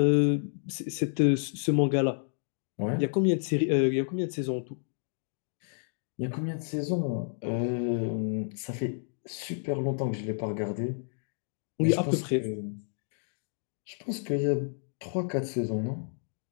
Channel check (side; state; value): right; silent; digital silence